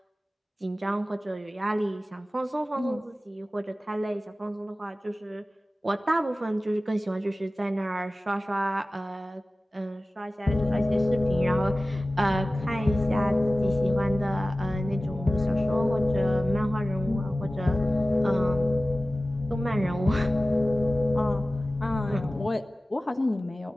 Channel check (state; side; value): normal; both; correlation 0.96